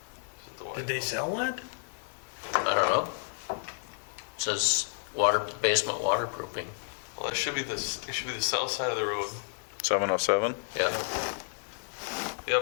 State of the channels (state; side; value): silent; right; digital silence